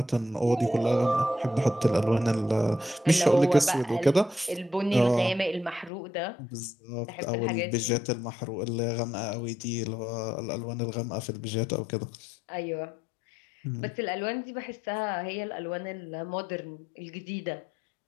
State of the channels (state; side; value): drops out; right; at 5.9 s